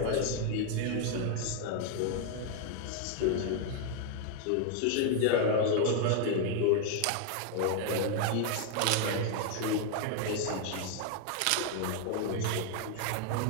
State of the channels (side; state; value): both; different; correlation 0.00